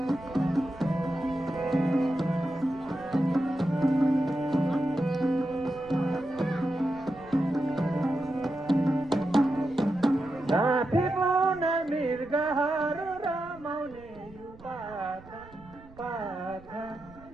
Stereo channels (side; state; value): right; noise; rumble, 21 dB below the sound